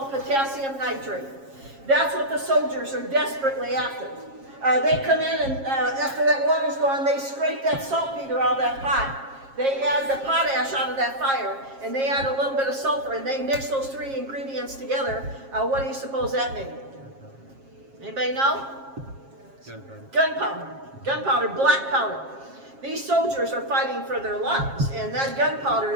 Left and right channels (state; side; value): late; left; 7.4 ms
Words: potassium nitrate. That's what the soldiers are desperately after. They come in and after that water's gone, they scrape that saltpeter out of that pot. They add the potash out of that fire, and they add a little bit of sulfur, and they mix those 3 ingredients together. What do you suppose that made? Anybody know? Gunpowder. Gunpowder, black powder. These soldiers are fighting for their lives, and that gunpowder